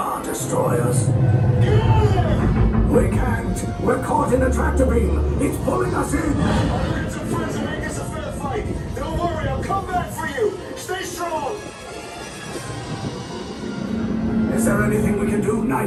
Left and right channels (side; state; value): both; identical; correlation 1.00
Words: Destroyers. Get out of there. We can't. We're caught in a tractor beam. It's pulling us in. I'll get some friends and make this a fair fight. Don't worry. I'll come back for you. Stay strong. Is there anything we can do,